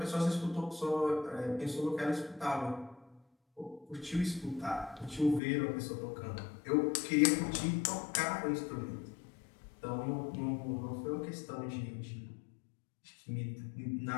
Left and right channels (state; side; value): drops out; right; at 5.4 s